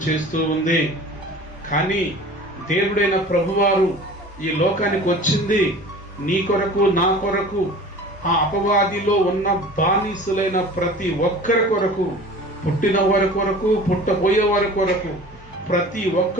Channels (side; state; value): both; normal; correlation 0.41